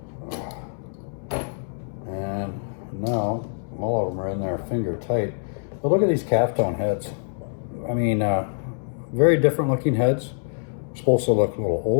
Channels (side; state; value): right; silent; 62 dB below the other